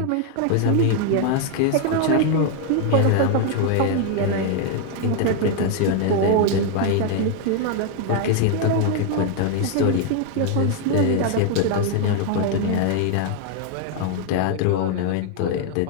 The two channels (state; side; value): different; both; correlation 0.00